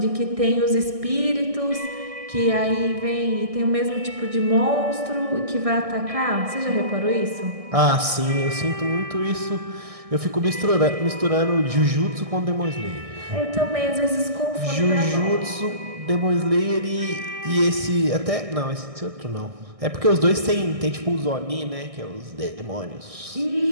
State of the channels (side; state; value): left; late; 1.6 ms